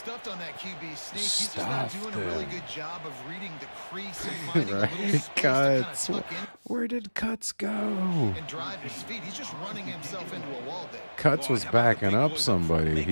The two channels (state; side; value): inverted; both; correlation -1.00